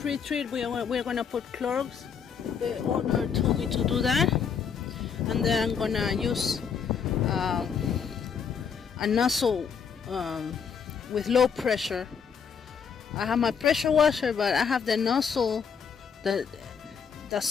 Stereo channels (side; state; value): right; quieter; 6.7 dB